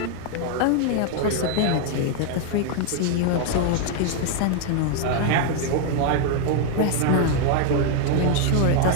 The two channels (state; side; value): different; both; correlation 0.00